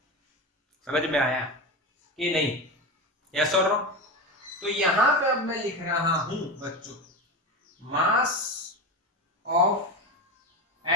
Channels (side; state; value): both; normal; correlation 0.21